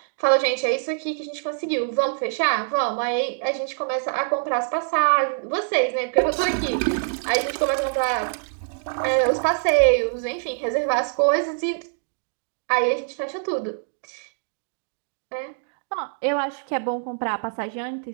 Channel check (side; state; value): left; silent; digital silence